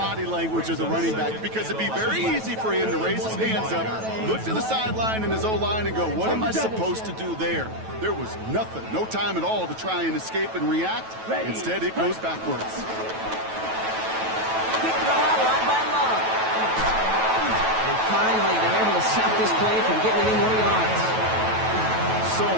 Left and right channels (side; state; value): left; late; 9.2 ms